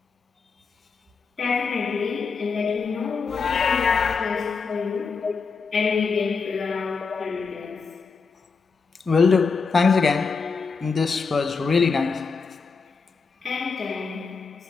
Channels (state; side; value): quieter; right; 5.0 dB